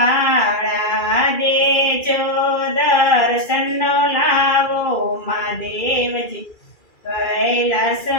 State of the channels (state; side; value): late; right; 2.4 ms